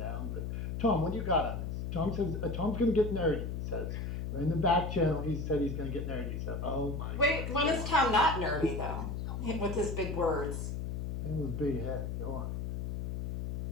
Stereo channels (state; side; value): noise; left; hum, 3 dB below the sound